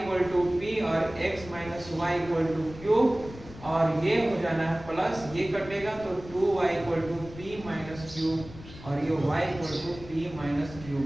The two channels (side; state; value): left; noise; rumble, 16 dB below the sound